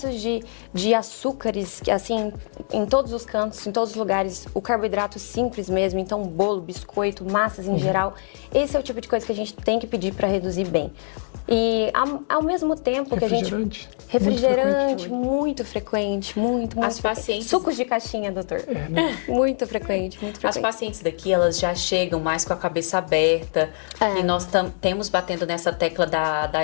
de açúcares, assim, em todos os cantos, em todos os lugares, o carboidrato simples mesmo, então bolo, biscoito, massas em geral, esse é o tipo de coisa que a gente tem que pedir para reduzir bem. E ao mesmo tempo que a gente... Refrigerante, muito frequente, muito As frequente. Pacientes... Sucos de caixinha, doutor. Muito frequente, muito frequente. As pacientes daqui, elas já chegam mais com a cabeça aberta. E nós temos batendo nessa tecla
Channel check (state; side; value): silent; right; digital silence